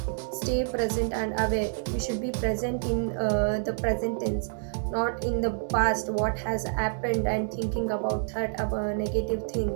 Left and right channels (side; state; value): left; silent; digital silence